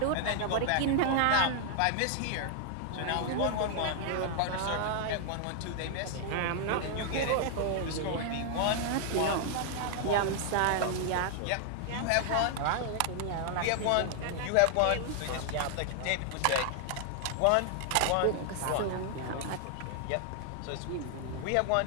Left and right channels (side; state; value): both; different; correlation 0.00